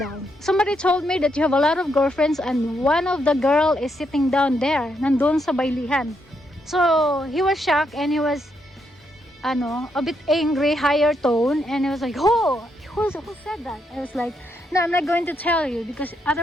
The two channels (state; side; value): normal; both; correlation 0.78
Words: Somebody told me that you have a lot of girlfriends and one of the girl is sitting down there, nandun sa baylihan. So, he was shocked and he was, a bit angry, higher tone, and he was like, oh, who said that? I was like, no, I'm not going to tell you because